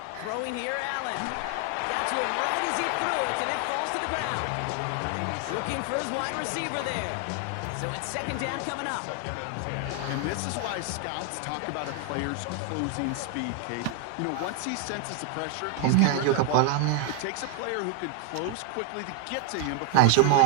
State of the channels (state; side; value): different; both; correlation 0.01